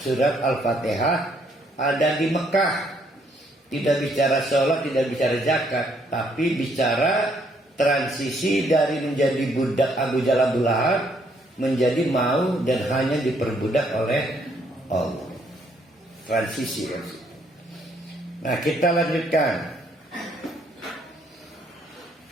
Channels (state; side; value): normal; both; correlation 0.69